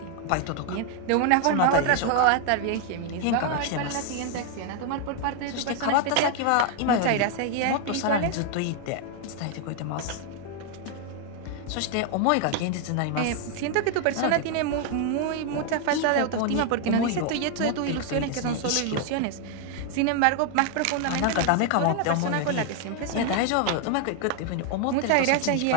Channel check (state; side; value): different; both; correlation 0.00